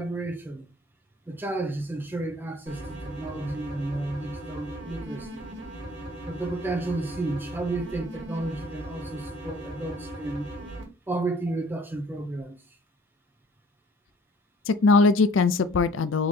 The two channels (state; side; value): normal; both; correlation 0.54